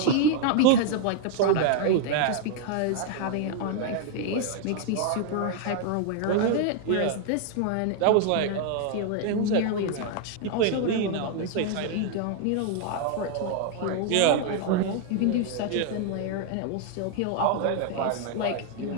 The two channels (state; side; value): different; both; correlation 0.00